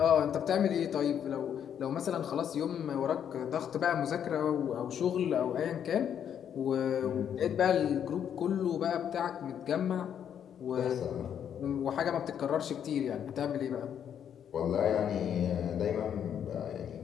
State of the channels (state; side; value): quieter; right; 8.9 dB